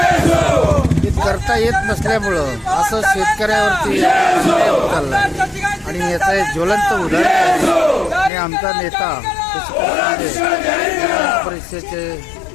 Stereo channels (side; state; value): right; drops out; at 8.3 s